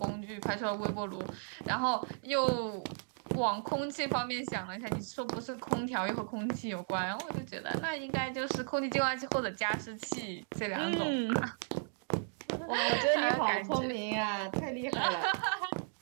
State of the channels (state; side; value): silent; left; digital silence